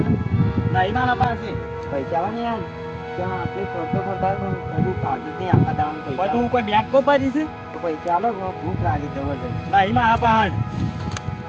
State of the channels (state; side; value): identical; both; correlation 1.00